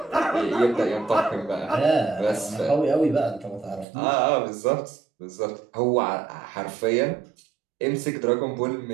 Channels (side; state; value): left; drops out; at 3.9 s